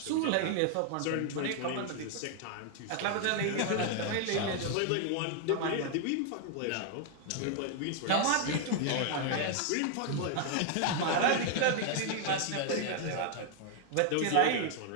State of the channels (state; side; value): different; both; correlation 0.00